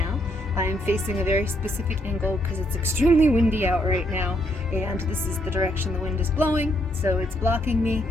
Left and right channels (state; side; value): normal; both; correlation 0.74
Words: I am facing a very specific angle because it's extremely windy out right now, and this is the direction the wind is blowing, so it's blocking me,